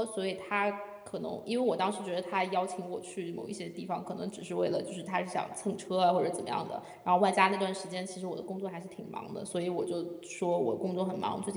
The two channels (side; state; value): both; identical; correlation 1.00